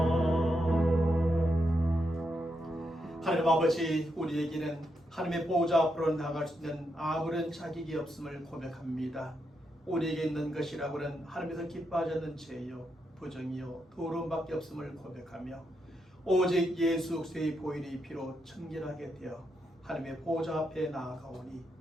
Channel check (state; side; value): normal; both; correlation 0.83